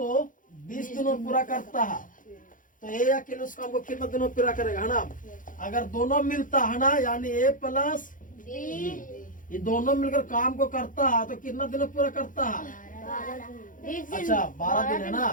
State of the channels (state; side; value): late; right; 0.39 ms